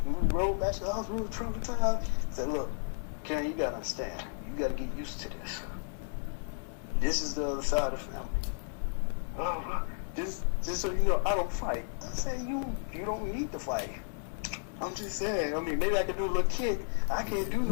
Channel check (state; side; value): silent; right; digital silence